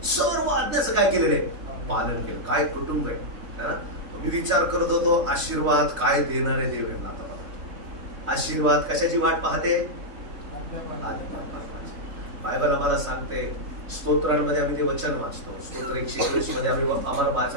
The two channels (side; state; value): left; late; 3.1 ms